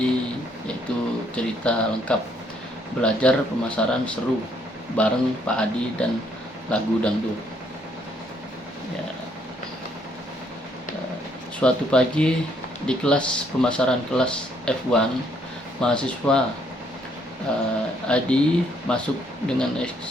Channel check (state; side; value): normal; both; correlation 0.69